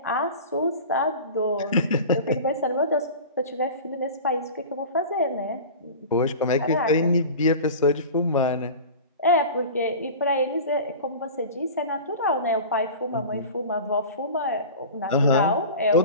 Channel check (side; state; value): both; inverted; correlation -0.35